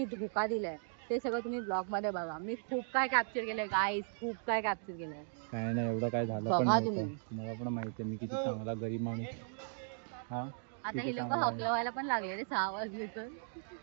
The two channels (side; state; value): left; silent; digital silence